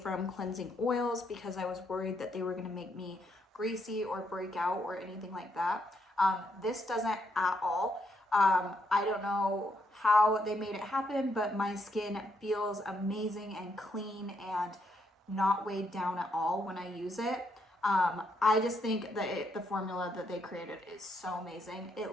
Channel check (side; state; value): both; normal; correlation 0.76